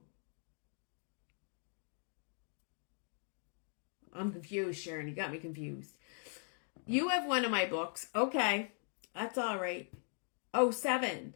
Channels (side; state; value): right; silent; 51 dB below the other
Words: I'm confused, Sharon. You got me confused. You have one of my books. Okay. That's all right. Oh, 7.